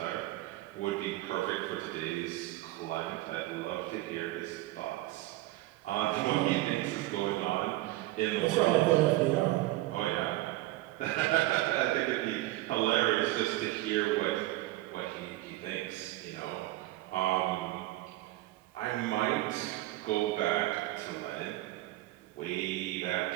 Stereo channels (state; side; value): quieter; left; 17.4 dB